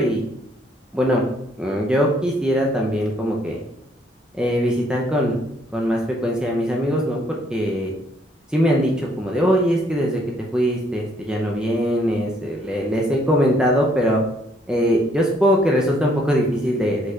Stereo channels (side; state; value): both; normal; correlation 0.67